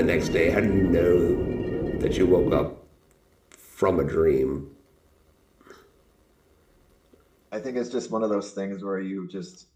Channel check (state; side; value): identical; both; correlation 1.00